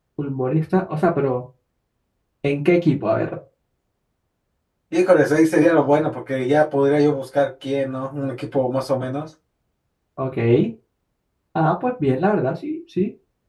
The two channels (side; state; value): both; identical; correlation 1.00